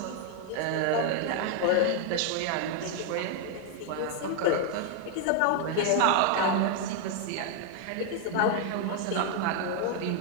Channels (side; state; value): both; different; correlation 0.00